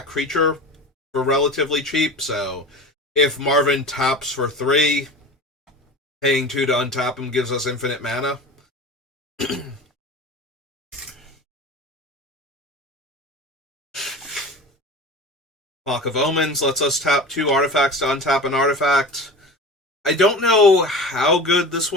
creature for relatively cheap, so if Marvin taps for 3, paying 2 to untap him gives us infinite mana. Clock of Omens lets us tap 2 artifacts to untap an artifact. I don't know how good this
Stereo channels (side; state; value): both; normal; correlation 0.34